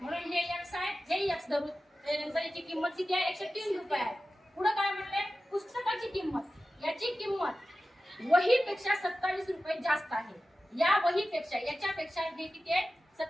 हे एक्स आहे, हे एक्स धरू. त्यानंतर याची किंमत किती आहे, 103 रुपये आहे. पुढे काय म्हणले? पुस्तकाची किंमत, याची किंमत वहीपेक्षा 27 रुपये जास्त आहे. या वहीपेक्षा याच्यापेक्षा हे किती आहे,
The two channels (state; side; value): normal; both; correlation 0.94